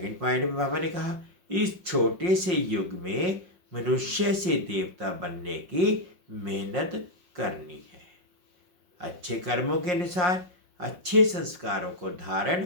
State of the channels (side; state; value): left; late; 5.6 ms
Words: पॉइंट में बाबा ने कहा, इस छोटे से युग में मनुष्य से देवता बनने की मेहनत करनी है। अच्छे कर्मों के अनुसार अच्छे संस्कारों को धारण